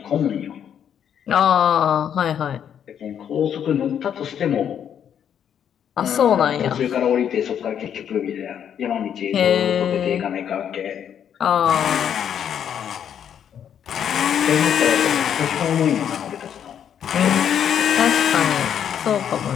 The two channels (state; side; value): quieter; right; 8.9 dB